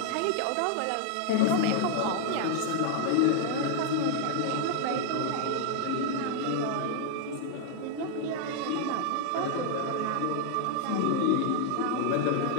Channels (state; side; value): different; both; correlation 0.00